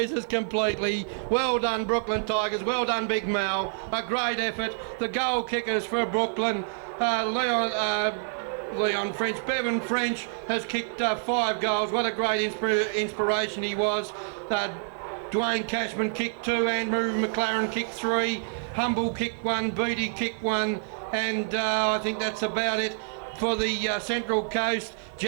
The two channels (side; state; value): left; silent; 60 dB below the other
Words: completely. Well done, Brooklyn Tigers. Well done, Big Mel. A great effort. The goal kickers for Brooklyn, Leon French. Bevan French has kicked 5 goals. What a great inspiration he was. Dwayne Cashman kicked 2. Andrew McLaren kicked 3. Humble kicked 1. Beatty kicked 1. And I think that's about it. For the Central Coast,